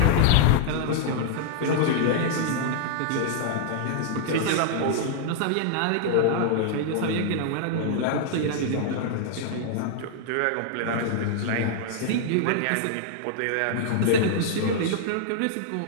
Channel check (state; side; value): different; both; correlation -0.01